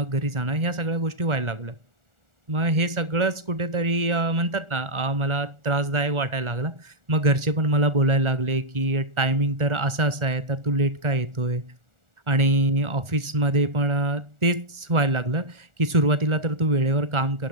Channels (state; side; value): late; left; 1.4 ms